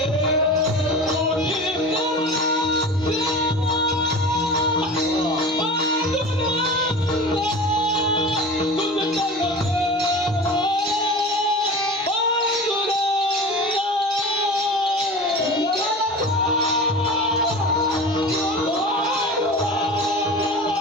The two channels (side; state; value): both; normal; correlation 0.34